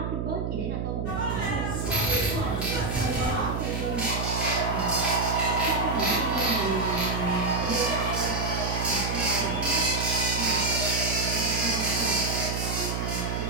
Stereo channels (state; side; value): noise; right; hum, 2 dB below the sound